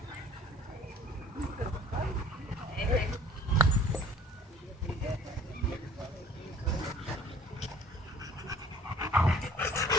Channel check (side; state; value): both; normal; correlation 0.51